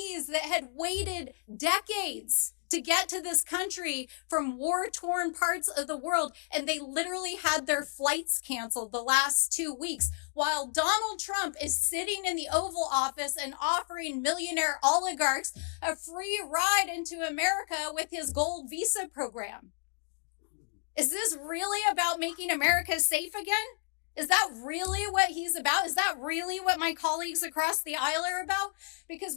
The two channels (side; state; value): right; silent; 57 dB below the other